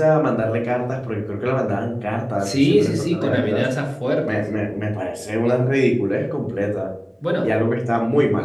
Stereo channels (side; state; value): both; identical; correlation 1.00